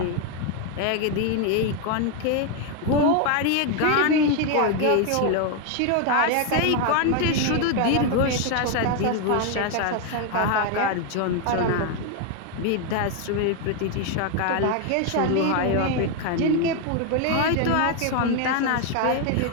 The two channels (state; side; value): different; both; correlation 0.01